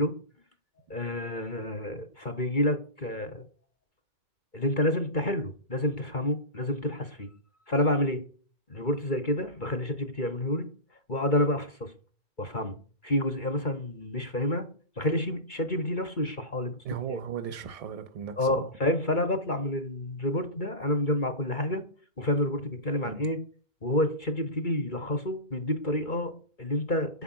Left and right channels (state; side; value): late; right; 2.3 ms